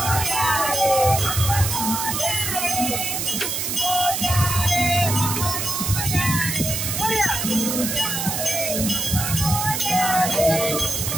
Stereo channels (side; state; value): right; noise; hiss, 2 dB below the sound